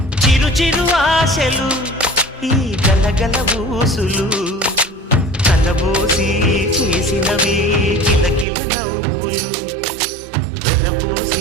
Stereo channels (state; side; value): drops out; left; at 8.5 s